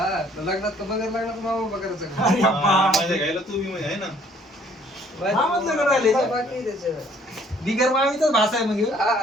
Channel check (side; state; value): both; normal; correlation 0.60